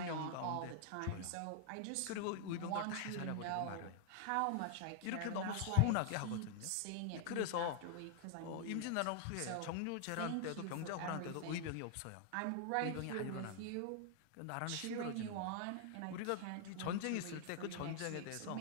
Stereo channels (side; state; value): both; different; correlation 0.00